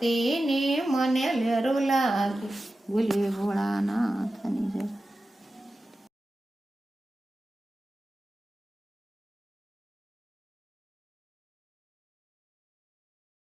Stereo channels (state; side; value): normal; both; correlation 0.93